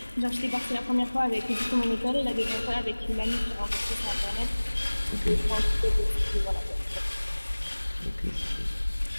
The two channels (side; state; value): both; inverted; correlation -1.00